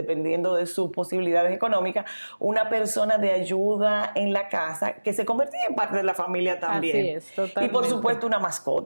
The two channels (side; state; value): both; inverted; correlation -1.00